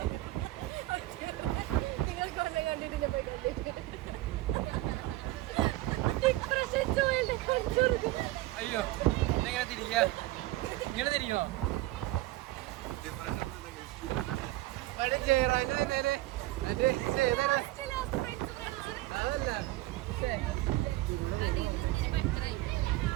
അയ്യോ എങ്ങനെ തിരിക്കുക ഇങ്ങനെ തിരിക്കുമോ അതല്ല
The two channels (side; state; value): left; quieter; 17.8 dB